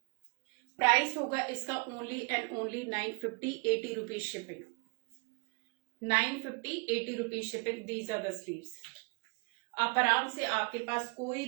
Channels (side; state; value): left; quieter; 31.7 dB